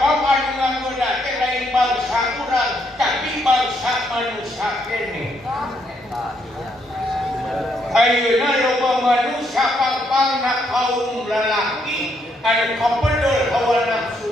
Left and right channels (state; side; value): normal; both; correlation 0.74